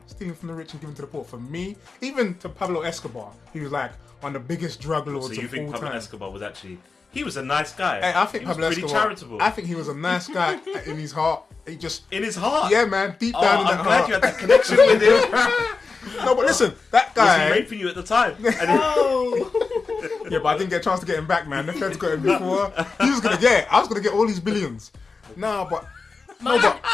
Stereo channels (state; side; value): quieter; right; 4.4 dB